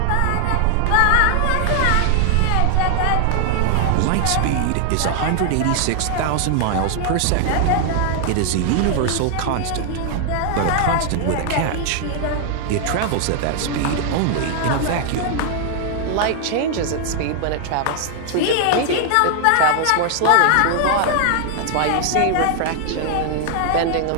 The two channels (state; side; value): different; both; correlation 0.00